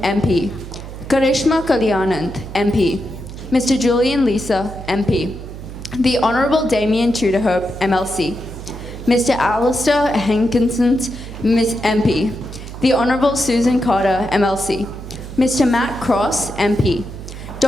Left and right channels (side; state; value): right; noise; hum, 12 dB below the sound